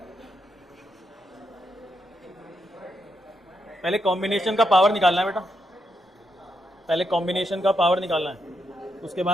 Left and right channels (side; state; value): both; normal; correlation 0.81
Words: पहले कॉम्बिनेशन का पावर निकालना है बेटा, पहले कॉम्बिनेशन का पावर निकालना है, उसके